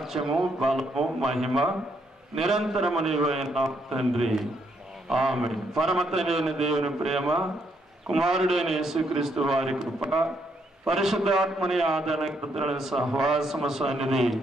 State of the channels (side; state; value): both; normal; correlation 0.75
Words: బలము, మహిమ నిరంతరము నీవైన తండ్రి, ఆమేన్. పరమతండ్రి దేవుని ప్రేమ, కుమారుడైన యేసుక్రీస్తు వారి కృప, పరిశుద్ధాత్మని ఆదరణ సహవాసము సన్నిధి